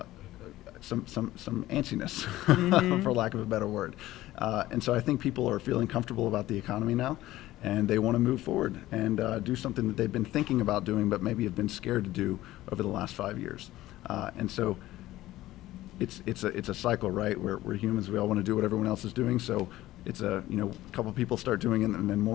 some antsiness, for lack of a better word. And so I think people are feeling comfortable about the economy now, and they want to move forward and do something that they've been thinking about doing, but maybe have been scared to do over the last 5 years. And so it's a cycle, right? We're humans. We all want to do what everyone else is doing. So it's a couple people start doing it, and then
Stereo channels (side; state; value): right; quieter; 15.9 dB